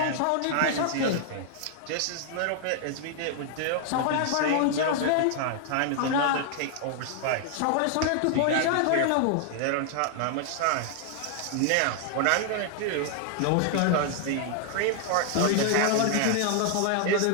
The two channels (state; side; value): different; both; correlation 0.00